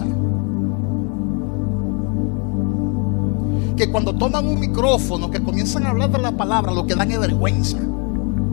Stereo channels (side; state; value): right; quieter; 35.4 dB